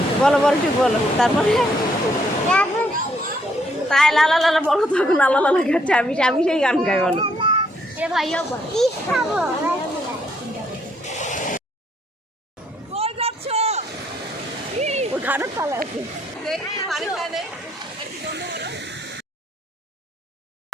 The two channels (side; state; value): both; normal; correlation 0.70